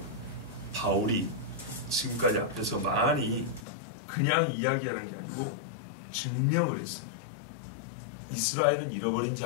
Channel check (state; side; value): drops out; right; at 3.7 s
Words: 바울이 지금까지 앞에서 많이 그냥 이야기하는 게 아니고 증명을 했어요. 이스라엘은 잃어버린